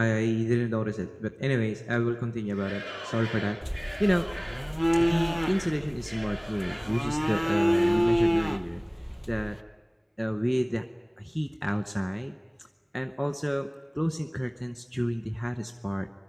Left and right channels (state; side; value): identical; both; correlation 1.00